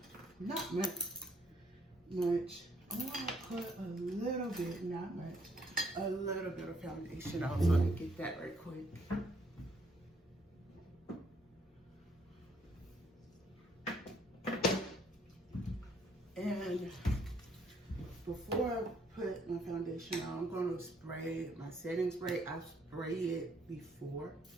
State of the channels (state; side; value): normal; both; correlation 0.68